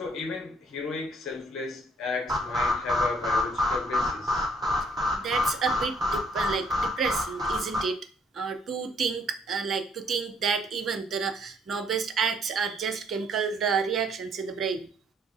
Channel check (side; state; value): both; normal; correlation 0.64